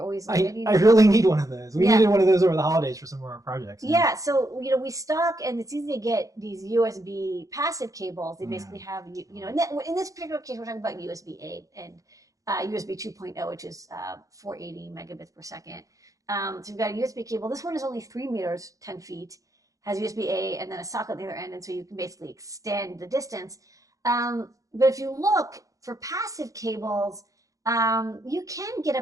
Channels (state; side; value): late; left; 0.16 ms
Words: always. I really need one of those. We needed one of those over the holidays for some of our projects. Yeah, so we stock, and it's easy to get these USB passive cables. They basically have in this particular case, we're talking about USB 8 and USB 2.0, which is 480 megabits per second. So you've got a USB cable. This one is only 3 meters, 10 feet, has USB-A and then a socket on the other end, and so you can basically extend the distance. But if you look for passive cables, you can get